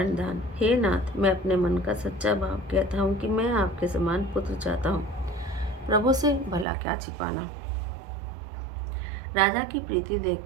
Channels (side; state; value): left; drops out; at 6.7 s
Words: हे नाथ, मैं अपने मन का सच्चा भाव कहता हूँ कि मैं आपके समान पुत्र चाहता हूँ। प्रभु से भला क्या छिपाना। राजा की प्रीति